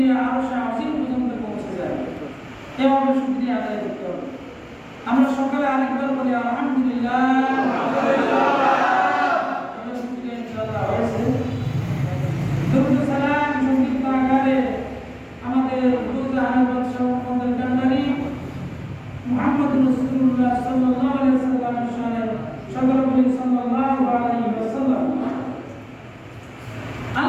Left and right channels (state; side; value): identical; both; correlation 1.00